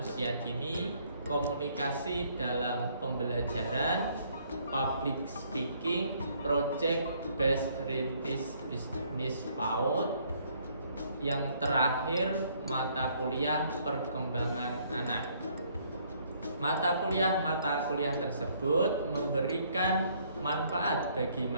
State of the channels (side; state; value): both; inverted; correlation -0.65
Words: dini, komunikasi dalam pembelajaran, public speaking, project based rintis bisnis PAUD. Yang terakhir, mata kuliah perkembangan anak. Mata kuliah tersebut memberikan manfaat bagi